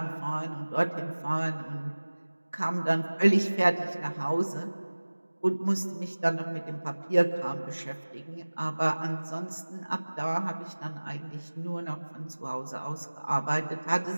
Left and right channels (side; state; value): both; inverted; correlation -1.00